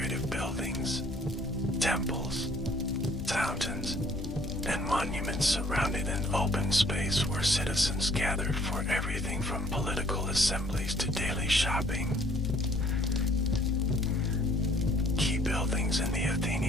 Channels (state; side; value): normal; both; correlation 0.59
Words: buildings, temples, fountains, and monuments surrounded an open space where citizens gathered for everything from political assemblies to daily shopping. Key buildings in the